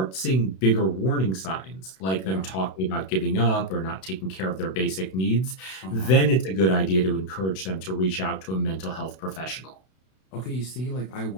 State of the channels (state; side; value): late; right; 32 ms